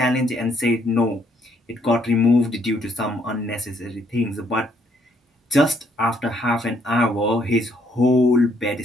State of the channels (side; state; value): both; normal; correlation 0.69